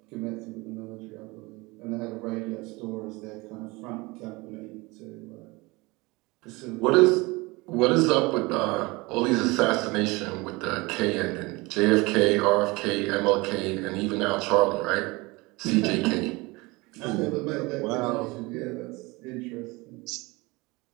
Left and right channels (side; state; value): left; quieter; 24.0 dB